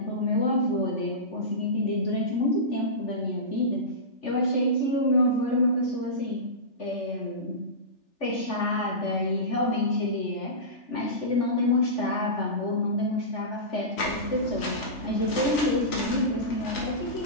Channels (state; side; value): late; right; 3.4 ms